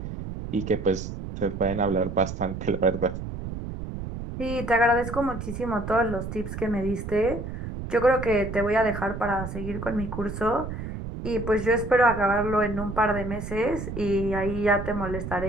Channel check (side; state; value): right; noise; rumble, 7 dB below the sound